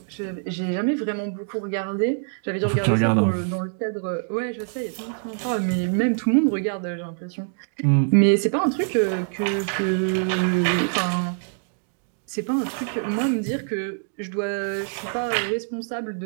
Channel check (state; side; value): silent; left; digital silence